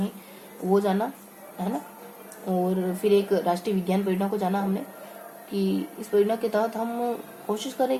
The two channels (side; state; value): both; identical; correlation 1.00